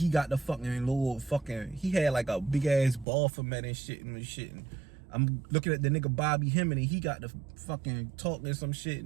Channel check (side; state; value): left; drops out; at 3.1 s